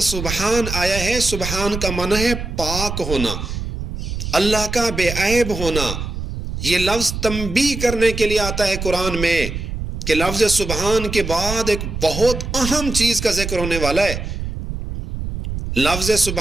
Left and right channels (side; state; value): right; noise; rumble, 6 dB below the sound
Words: سبحان آیا ہے، سبحان کا معنی ہے پاک ہونا، اللہ کا بے عیب ہونا۔ یہ لفظ تنبیہ کرنے کے لیے آتا ہے قرآن میں کہ لفظ سبحان کے بعد ایک بہت اہم چیز کا ذکر ہونے والا ہے۔ لفظ